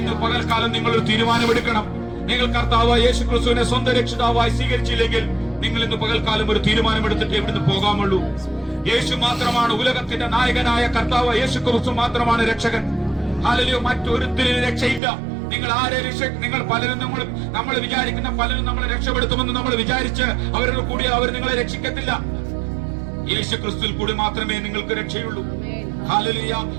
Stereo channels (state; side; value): drops out; left; at 15.0 s